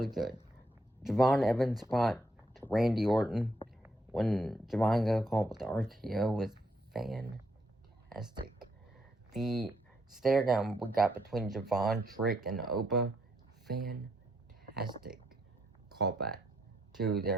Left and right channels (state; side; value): normal; both; correlation 0.75